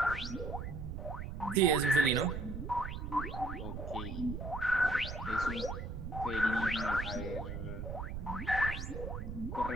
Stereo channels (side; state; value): right; noise; rumble, 6 dB below the sound